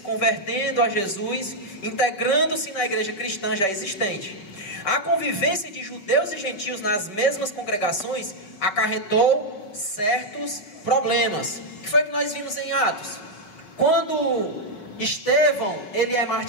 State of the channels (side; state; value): right; late; 5.0 ms